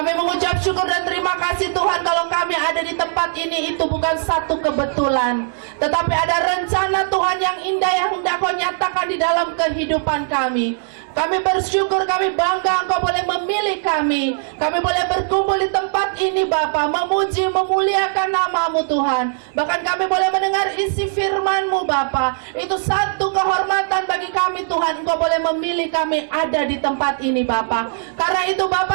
mengucap syukur dan terima kasih Tuhan, kalau kami ada di tempat ini itu bukan satu kebetulan, tetapi ada rencana Tuhan yang indah yang hendak Kau nyatakan di dalam kehidupan kami. Kami bersyukur, kami bangga Engkau boleh memilih kami. Kami boleh berkumpul di tempat ini Bapa, memuji, memuliakan nama-Mu Tuhan. Bahkan kami boleh mendengar isi firman-Mu Bapa. Itu satu kehormatan bagi kami Tuhan, Engkau boleh memilih kami ada di tempat ini Bapa. Karena itu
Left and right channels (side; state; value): left; silent; 61 dB below the other